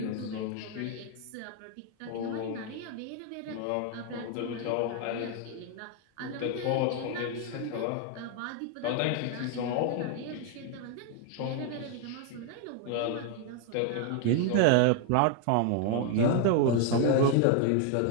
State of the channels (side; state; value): both; different; correlation 0.01